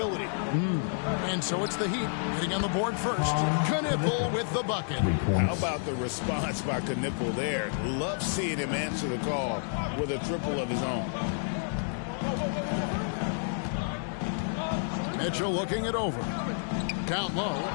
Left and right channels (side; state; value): right; silent; digital silence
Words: And so it's the Heat getting on the board first. Knipple with the bucket. How about the response by Knipple there? Love seeing him answer the call with a triple of his own. Mitchell looking it over. Down low.